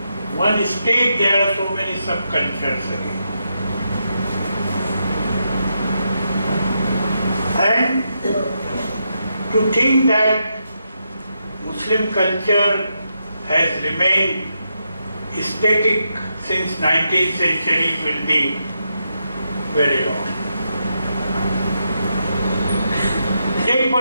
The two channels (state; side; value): inverted; both; correlation -0.83